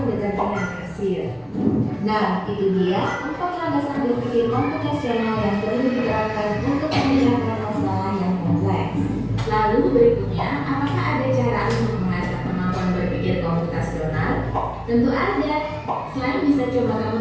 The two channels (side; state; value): both; identical; correlation 1.00